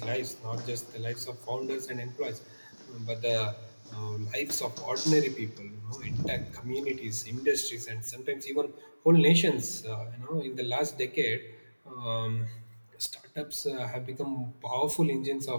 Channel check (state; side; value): inverted; both; correlation -1.00